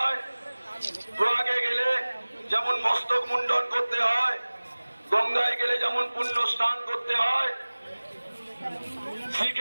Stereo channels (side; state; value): both; inverted; correlation -1.00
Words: প্রয়াগে গেলে যেমন মস্তক মুন্ডন করতে হয়, গঙ্গায় গেলে যেমন পুণ্য স্নান করতে হয়,